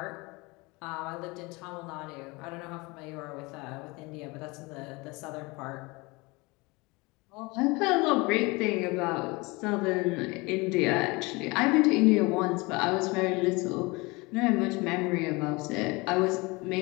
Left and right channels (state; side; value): quieter; right; 25.1 dB